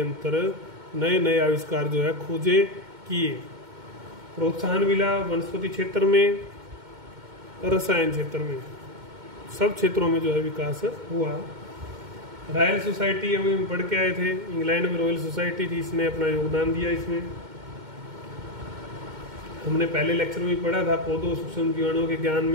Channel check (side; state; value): left; late; 2.2 ms